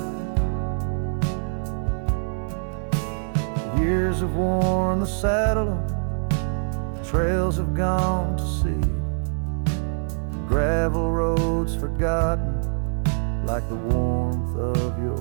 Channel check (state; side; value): silent; left; 60 dB below the other